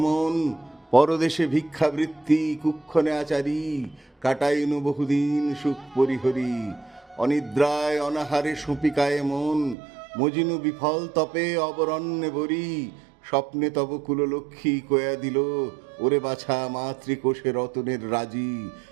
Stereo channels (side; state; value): left; drops out; at 9.8 s